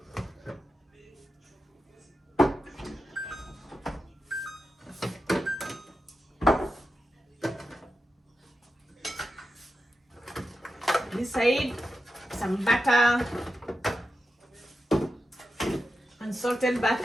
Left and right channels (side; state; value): both; normal; correlation 0.90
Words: This side, some butter, unsalted